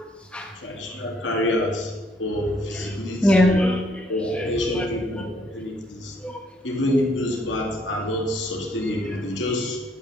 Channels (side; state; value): both; normal; correlation 0.67